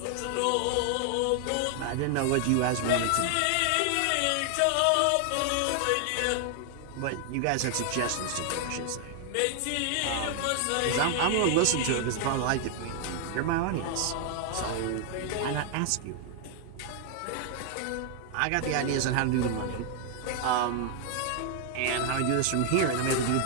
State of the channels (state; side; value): different; both; correlation 0.00